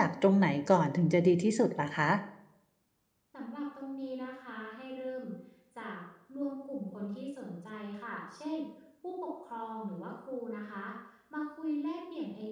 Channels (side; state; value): both; identical; correlation 1.00